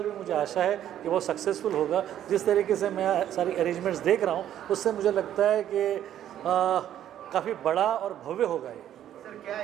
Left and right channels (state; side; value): quieter; left; 11.1 dB